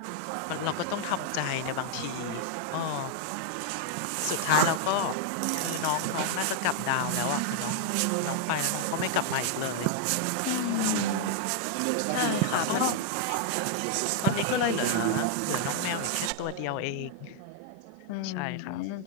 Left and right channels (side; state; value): both; different; correlation 0.00